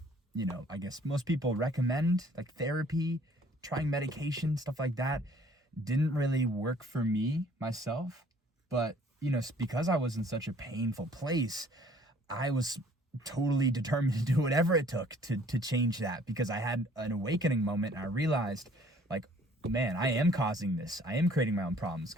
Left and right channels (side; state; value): both; normal; correlation 0.57